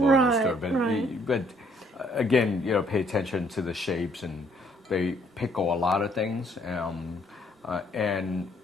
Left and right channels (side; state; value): both; normal; correlation 0.65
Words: in the Right, store, but again, you know, pay attention to the shapes, and they pickle a lot of things, and